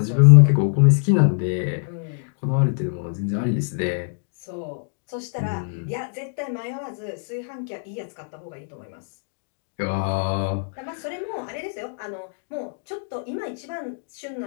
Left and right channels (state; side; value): silent; right; digital silence